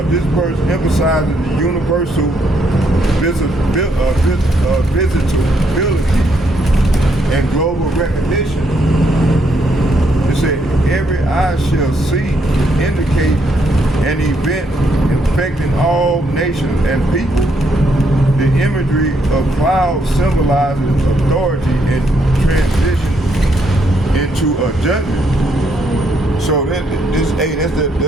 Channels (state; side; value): normal; both; correlation 0.74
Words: this verse emphasizes the universal visitability and global recognition. It said, every eye shall see, indicate an event affecting all nations and people. The imagery of clouds symbolizes authority and transition into a judgment. So them